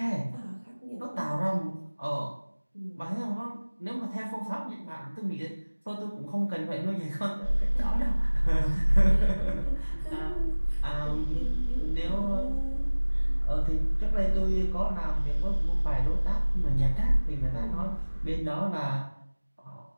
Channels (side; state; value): both; inverted; correlation -1.00